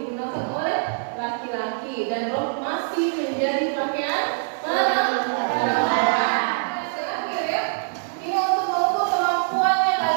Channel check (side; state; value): left; silent; 63 dB below the other